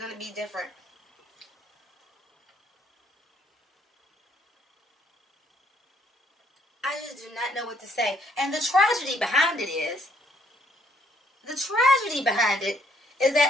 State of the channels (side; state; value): both; normal; correlation 0.68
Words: to be different. I just do not know what to say. And the tragedy behind it is the tragedy behind it is